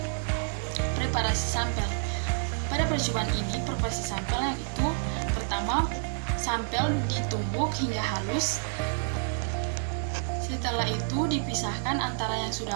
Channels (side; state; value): left; silent; 59 dB below the other